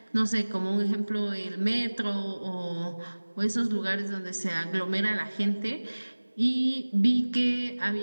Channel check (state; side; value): inverted; both; correlation -1.00